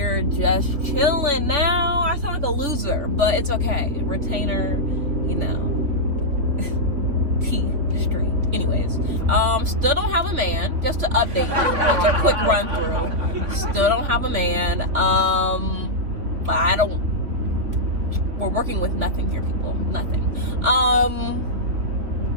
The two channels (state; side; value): late; left; 3.6 ms